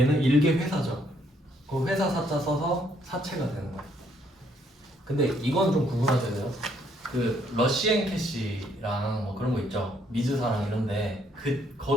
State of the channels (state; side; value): normal; both; correlation 0.69